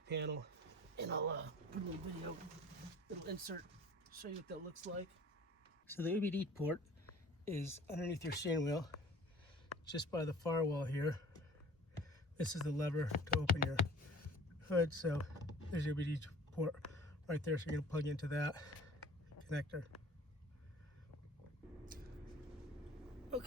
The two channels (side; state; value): both; normal; correlation 0.47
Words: panel. And I'll put a little video, little insert, show you what that looks like. So the OBD port is underneath your steering wheel, just by the firewall here. This is the lever to open your hood. So there's your OBD port right there. So you're gonna plug into that connector.